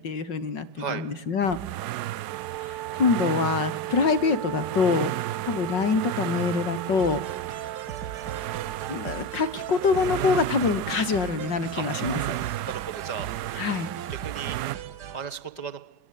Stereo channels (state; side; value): late; right; 5.5 ms